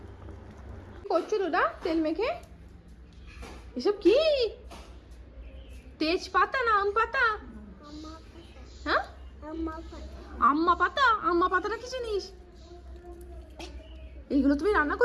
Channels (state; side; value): identical; both; correlation 1.00